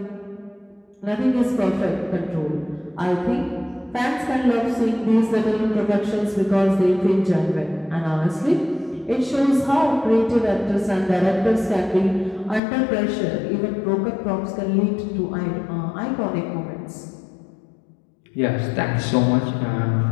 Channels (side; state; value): right; drops out; at 12.6 s